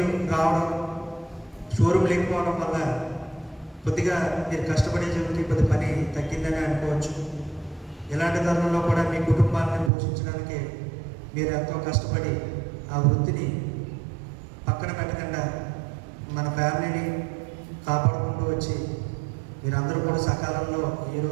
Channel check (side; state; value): left; drops out; at 9.9 s